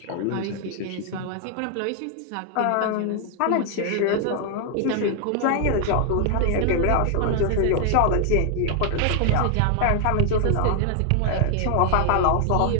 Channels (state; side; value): different; both; correlation 0.00